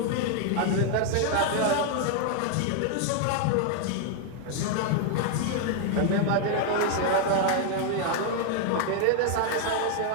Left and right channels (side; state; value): both; different; correlation 0.00